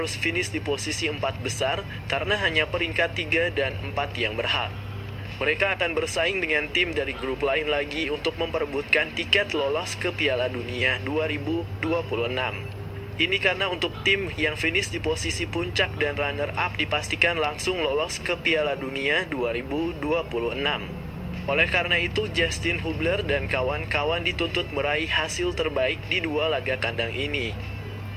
finish di posisi 4 besar karena hanya peringkat 3 dan 4 yang berhak. Mereka akan bersaing dengan tim dari grup lain lagi untuk memperebutkan tiket lolos ke Piala Dunia 2026. Ini karena untuk tim yang finish di posisi puncak dan runner-up dipastikan langsung lolos ke Piala Dunia 2026. Oleh karena itu, Justin Hubler dan kawan-kawan dituntut meraih hasil terbaik di 2 laga kandang ini.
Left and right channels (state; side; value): identical; both; correlation 1.00